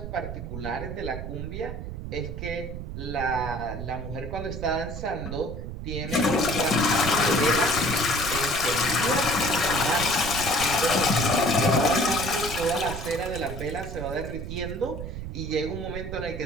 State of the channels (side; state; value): right; noise; rumble, 7 dB below the sound